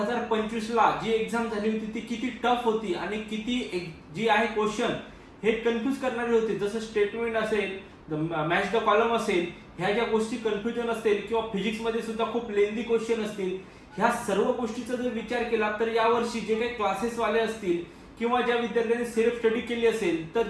ला जी एक्झाम झाली होती ती किती टफ होती आणि किती जी आहे क्वेश्चन हे कन्फ्यूज करणारे होते. जसं स्टेटमेंट असेल, मॅच द कॉलम असेल, ह्या ज्या गोष्टी कन्फ्युजन असतील किंवा फिजिक्स मध्ये सुद्धा खूप लेंदी क्वेश्चन असतील, ह्या सर्व गोष्टीचा जर विचार केला तर यावर्षी जे काही क्लासेस वाले असतील किंवा ज्या विद्यार्थ्यांनी सेल्फ स्टडी केली असेल तर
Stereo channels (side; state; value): both; identical; correlation 1.00